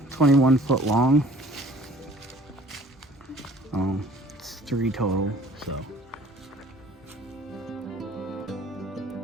21 foot long. It's 3 total, so.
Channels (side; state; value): both; normal; correlation 0.52